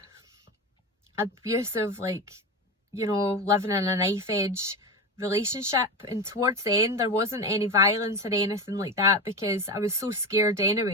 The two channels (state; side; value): normal; both; correlation 0.21